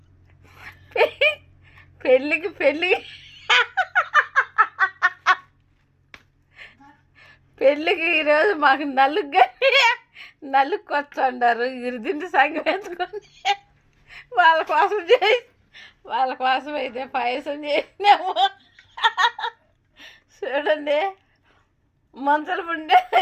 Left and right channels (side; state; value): both; identical; correlation 1.00